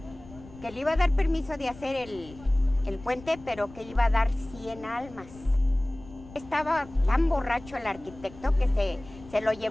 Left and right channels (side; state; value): left; noise; rumble, 19 dB below the sound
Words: le iba a dar permiso de hacer el puente, pero que iba a dar 100 almas. Estaba tan borracho el arquitecto que se lo